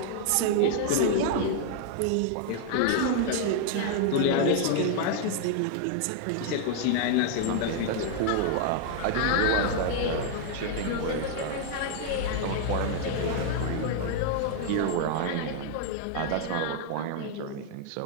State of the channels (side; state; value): both; different; correlation 0.00